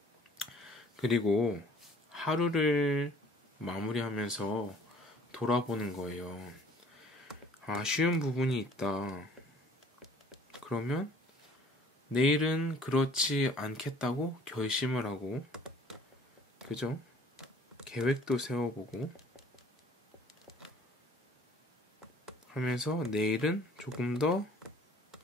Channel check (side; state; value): both; normal; correlation 0.53